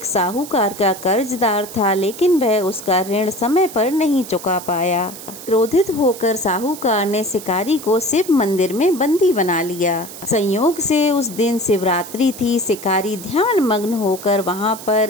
साहूकार का कर्जदार था, लेकिन वह उसका ऋण समय पर नहीं चुका पाया। क्रोधित होकर साहूकार ने शिकारी को शिव मंदिर में बंदी बना लिया। संयोग से उस दिन शिवरात्रि थी। शिकारी ध्यान मग्न होकर वहां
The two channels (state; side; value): noise; right; hiss, 14 dB below the sound